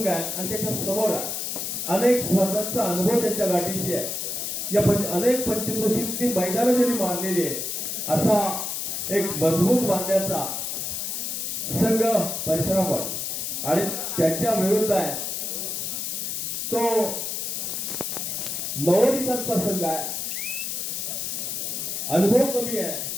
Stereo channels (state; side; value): noise; left; hiss, 3 dB below the sound